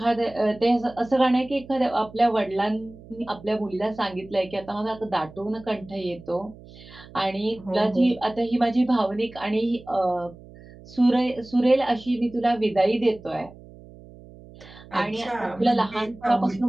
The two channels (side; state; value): right; noise; hum, 20 dB below the sound